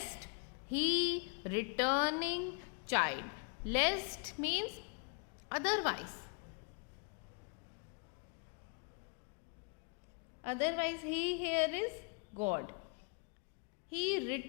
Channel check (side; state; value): right; quieter; 35.5 dB